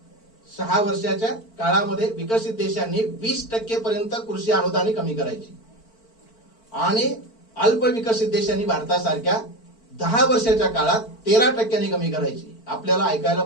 काळामध्ये विकसित देशांनी 20% पर्यंत कृषी अनुदाने कमी करायची आणि अल्प विकसित देशांनी भारतासारख्या 10 वर्षाच्या काळात 13% कमी करायची. आपल्याला ऐकायला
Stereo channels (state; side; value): late; right; 4.5 ms